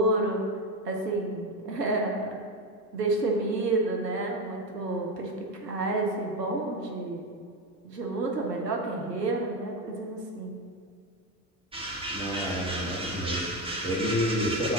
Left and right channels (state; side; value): normal; both; correlation 0.15